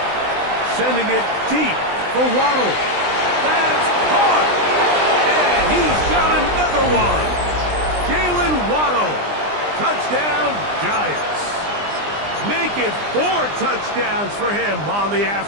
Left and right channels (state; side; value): late; left; 20 ms